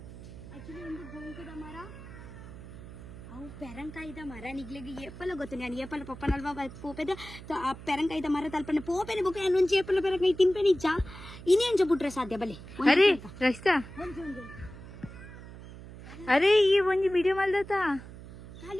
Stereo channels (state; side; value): noise; right; hum, 14 dB below the sound